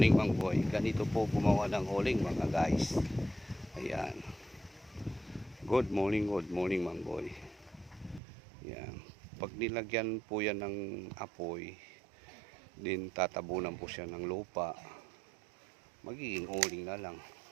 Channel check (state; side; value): drops out; left; at 8.2 s